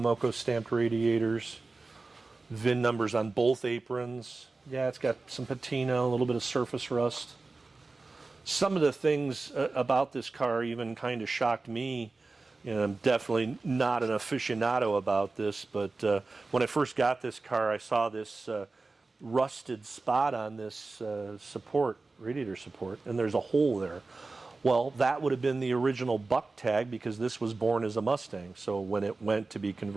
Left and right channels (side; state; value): left; quieter; 3.6 dB